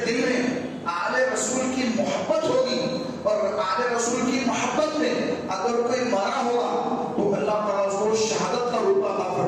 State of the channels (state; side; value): identical; both; correlation 1.00